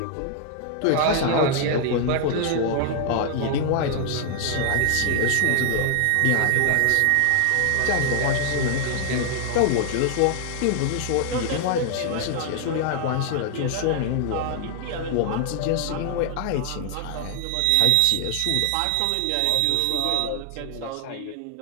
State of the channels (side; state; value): both; different; correlation 0.00